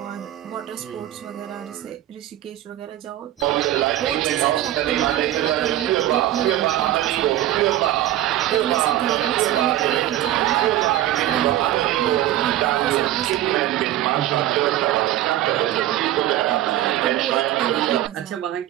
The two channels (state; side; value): quieter; left; 13.4 dB